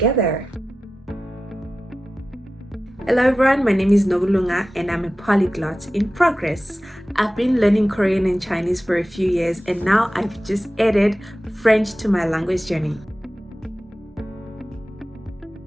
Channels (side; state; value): both; normal; correlation 0.94